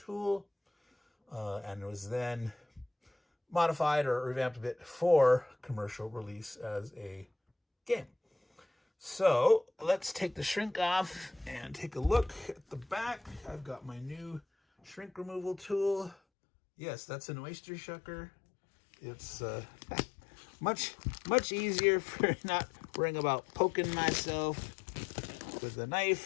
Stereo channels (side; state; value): right; drops out; at 16.2 s